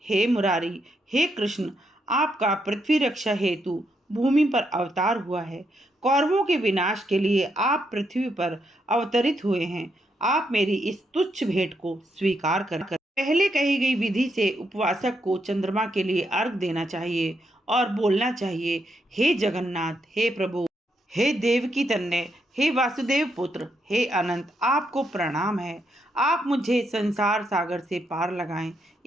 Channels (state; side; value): normal; both; correlation 0.79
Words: हे मुरारी, हे कृष्ण, आपका पृथ्वी रक्षा हेतु भूमि पर अवतार हुआ है। कौरवों के विनाश के लिए आप पृथ्वी पर अवतरित हुए हैं। आप मेरी इस तुच्छ भेंट को स्वीकार कर पहले कही गई विधि से उपवासक को चंद्रमा के लिए अर्घ देना चाहिए और बोलना चाहिए, हे जगन्नाथ, हे प्रभु, हे देवकी तनय, हे वासुदेव पुत्र, हे अनंत, आपको प्रणाम है। आप मुझे संसार सागर से पार लगाएं।